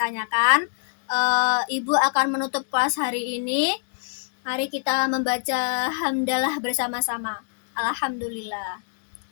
Ibu akan menutup kelas hari ini. Mari kita membaca hamdalah bersama-sama. Alhamdulillah.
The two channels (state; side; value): silent; right; digital silence